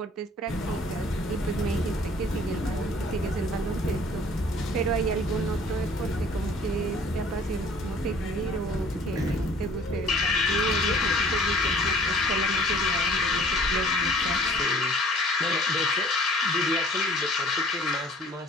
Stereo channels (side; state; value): both; normal; correlation 0.53